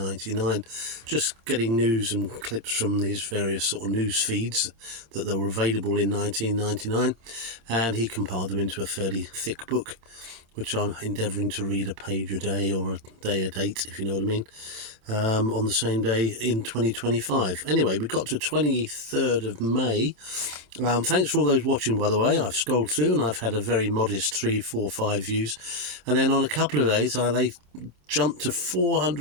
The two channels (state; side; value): late; left; 26 ms